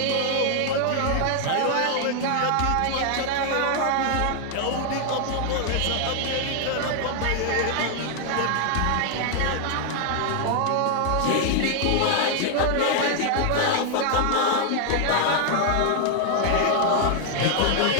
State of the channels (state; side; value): different; both; correlation 0.00